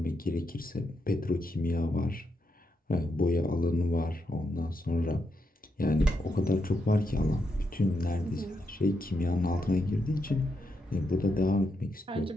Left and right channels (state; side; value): normal; both; correlation 0.82